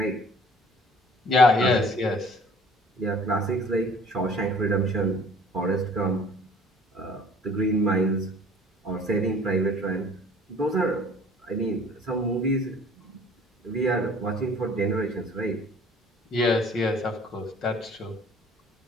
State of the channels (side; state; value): both; normal; correlation 0.51